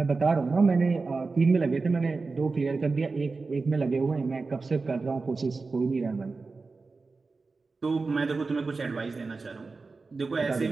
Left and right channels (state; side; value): quieter; left; 4.0 dB